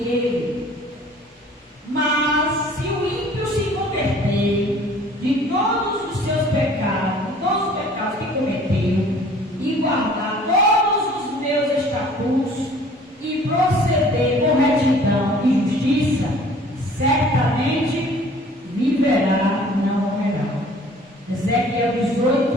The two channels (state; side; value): normal; both; correlation 0.51